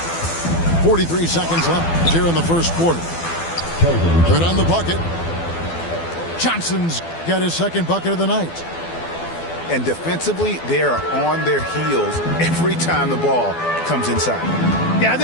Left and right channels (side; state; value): right; late; 12 ms